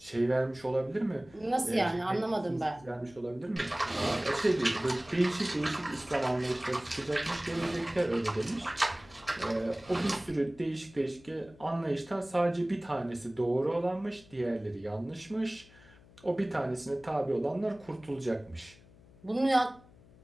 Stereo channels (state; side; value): noise; left; hum, 24 dB below the sound